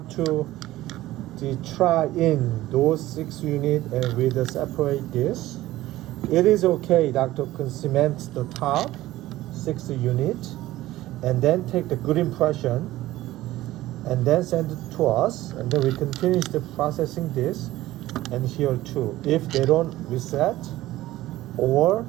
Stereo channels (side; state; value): left; quieter; 16.1 dB